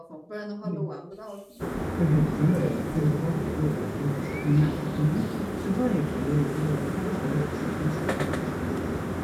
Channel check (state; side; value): identical; both; correlation 1.00